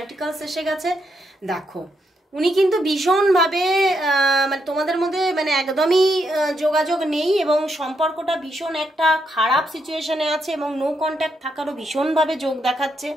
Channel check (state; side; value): normal; both; correlation 0.79